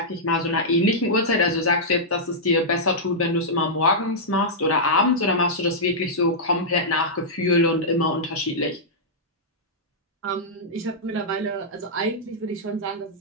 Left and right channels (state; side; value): normal; both; correlation -0.10